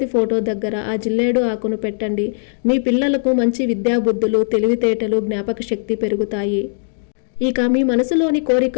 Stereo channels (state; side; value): silent; right; digital silence